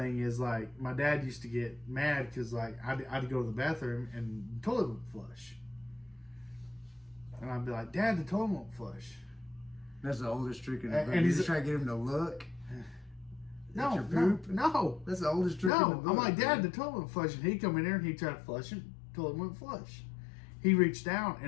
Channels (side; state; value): right; drops out; at 15.7 s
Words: is, like, my dad used to get mad because, like, I'd go to the bathroom and the toilet would flush. And I'd be like, Dad, the toilet won't flush. That's the oldest trick in the book. And You just try to get him to look. No. That's the oldest trick in the book. I'm like, Dad, the toilet won't flush. And he'd come in there and he'd try to flush it. The toilet wouldn't flush. He reached down